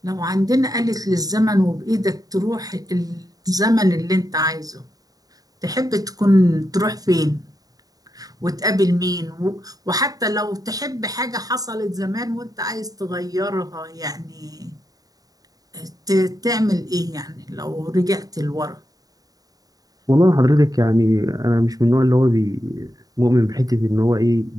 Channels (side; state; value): left; late; 0.18 ms